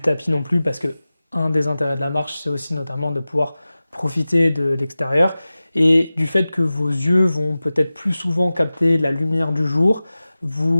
tapis non plus, parce que un des intérêts de la marche, c'est aussi notamment de pouvoir profiter de l'extérieur et du fait que vos yeux vont peut-être plus souvent capter la lumière du jour.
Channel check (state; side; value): inverted; both; correlation -0.96